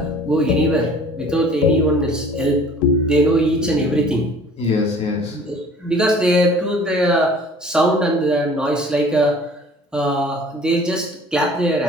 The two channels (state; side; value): normal; both; correlation 0.49